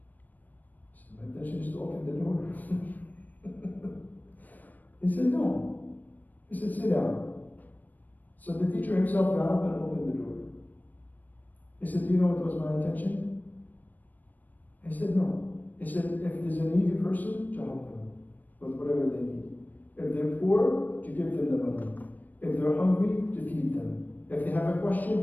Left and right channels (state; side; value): late; right; 0.085 ms